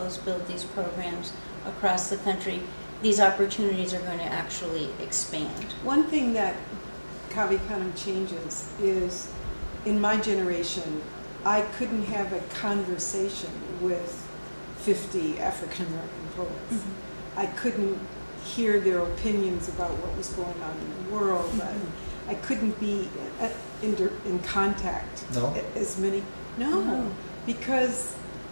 build these programs across the country, these opportunities are going to actually expand. One thing that Canem changes is, in my generation, I couldn't have a conversation with 50 African American poets. Mm-hmm. I couldn't hear their opinions about what was going on in the world. Mm-hmm. I couldn't be in contact as many. No, because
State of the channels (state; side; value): inverted; both; correlation -1.00